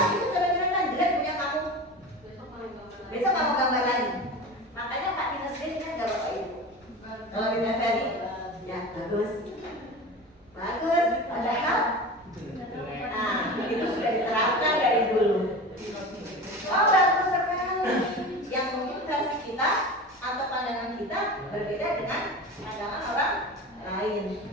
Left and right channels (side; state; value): both; normal; correlation 0.31